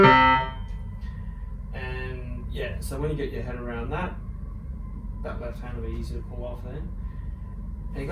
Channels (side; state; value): both; identical; correlation 1.00